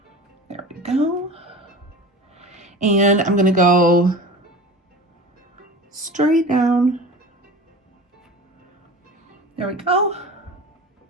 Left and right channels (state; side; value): normal; both; correlation 0.34